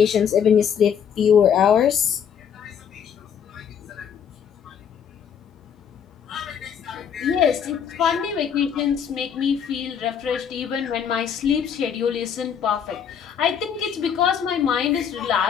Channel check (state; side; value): quieter; right; 7.8 dB